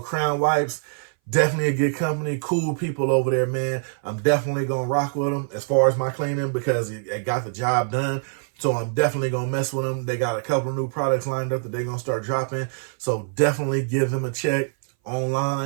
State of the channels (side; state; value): left; silent; 59 dB below the other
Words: Crown Wipes. Definitely a good company, cool people over there, man. I'm definitely gonna rock with them as far as my cleaning because it got the job done. So I'm definitely gonna mess with them. They got a couple of new products lined up that they're gonna start dropping. So definitely give them a check